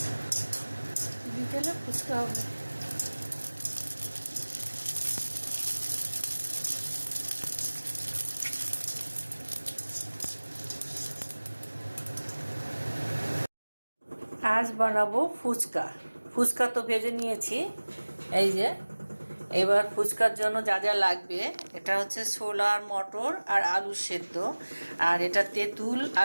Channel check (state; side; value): inverted; both; correlation -1.00